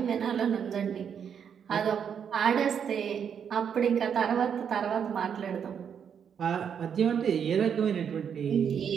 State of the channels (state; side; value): quieter; left; 7.7 dB